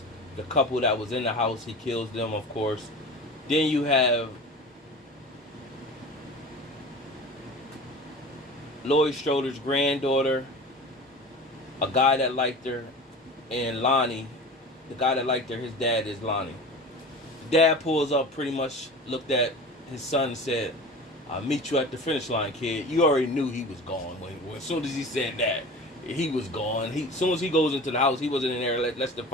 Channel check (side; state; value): both; normal; correlation 0.35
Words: The couple that was in the house, he kills them, of course. Then you have Laurie Strode's granddaughter, a guy that liked her, and Lonnie, the guy that liked her, his dad is Lonnie. Dad pulls up, pretty much looked at his son and said, I'll meet you at the finish line, kid. You already knew he was gone. When as soon as he said that, he was gone. As soon as he goes into the house, he wasn't in there less than